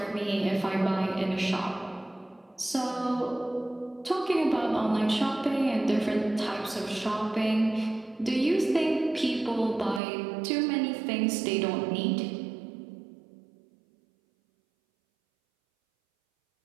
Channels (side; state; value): left; drops out; at 10.0 s